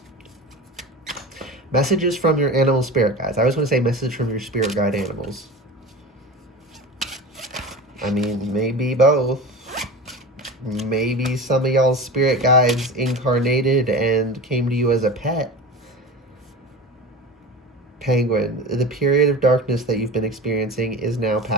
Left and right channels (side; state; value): both; normal; correlation 0.31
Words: your animal spirit guides. I always want to say message from your spirit guide animals. I mean, maybe both. Maybe some of y'all's spirit guides incarnated and came to you as a pet. Penguin, the period of darkness that you've been experiencing is now